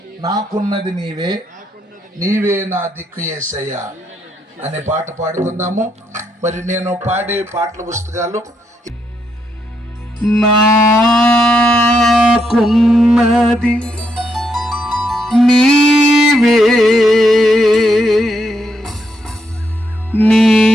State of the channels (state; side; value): normal; both; correlation 0.78